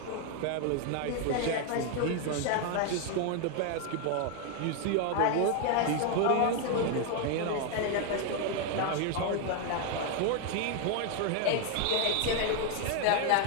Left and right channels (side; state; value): both; different; correlation 0.00